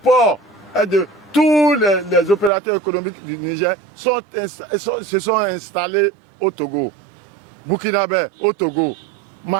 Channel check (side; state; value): left; drops out; at 2.5 s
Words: est de... Tous les opérateurs économiques du Niger se sont installés au Togo. Burkinabé au Togo.